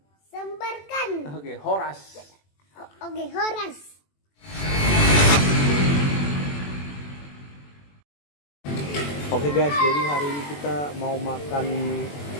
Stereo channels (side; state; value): right; late; 21 ms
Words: Sebarkan. Oke, Horas. Oke, Horas. Oke guys, jadi hari ini kita mau makan